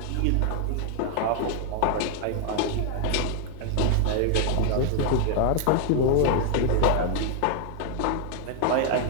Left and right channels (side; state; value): both; different; correlation 0.00